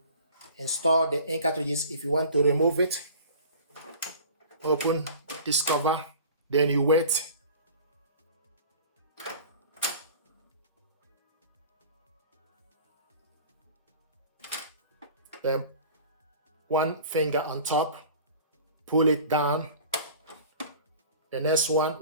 install the ink cartridges. If you want to remove it, open this cover, then you wait. Then one finger on top, pull it down. The next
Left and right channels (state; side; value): inverted; both; correlation -0.42